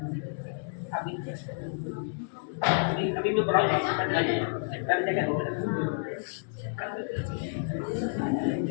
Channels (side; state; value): right; silent; digital silence